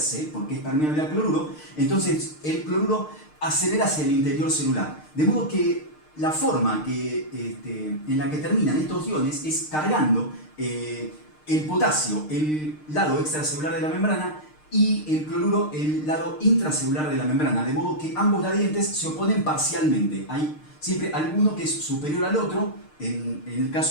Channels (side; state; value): right; late; 6.6 ms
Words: porque es permeable al cloruro, entonces el cloruro acelera hacia el interior celular. De modo que la forma en la que terminan estos iones es cargando el potasio, el lado extracelular de la membrana, y el cloruro, el lado intracelular de la membrana. De modo que ambos gradientes se oponen parcialmente. Hay siempre alguno que es superior al otro, en el